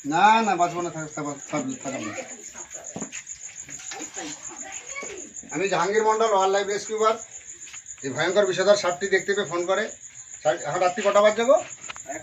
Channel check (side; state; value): both; identical; correlation 1.00